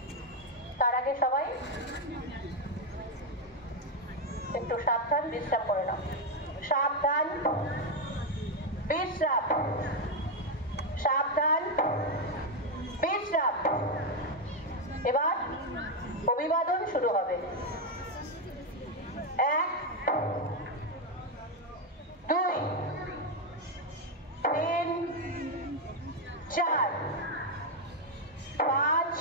তার আগে সবাই একটু সাবধান বিশ্রাম করে নাও। সাবধান বিশ্রাম, সাবধান বিশ্রাম। এবার অভিবাদন শুরু হবে। 1 2 3 4 5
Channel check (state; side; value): normal; both; correlation 0.05